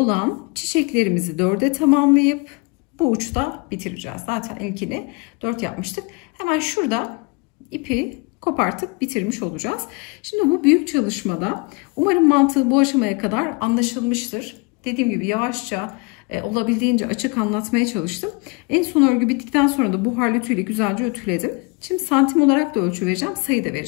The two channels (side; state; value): right; quieter; 28.3 dB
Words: çiçeklerimizi 4'e tamamlayıp bu uçta bitireceğiz. Zaten ilkini 4 yapmıştık. Hemen şurada ipi kopartıp bitirmiş olacağız. Şimdi bu büyük çalışmada umarım mantığı bu aşamaya kadar anlaşılmıştır. Dediğim gibi yavaşça olabildiğince açık anlatmaya çalıştım. En son örgü bittikten sonra da buharlı ütüyle güzelce ütüledim. Şimdi santim olarak da ölçü vereceğim, sayı da